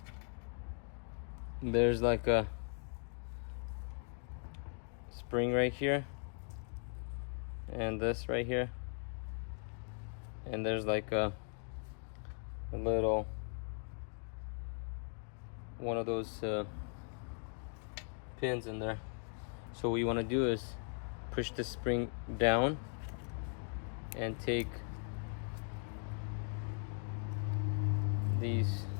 there's like a spring right here, and this right here, and there's like a little one of those pins in there. So what you want to do is push the spring down and take these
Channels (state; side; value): silent; right; 52 dB below the other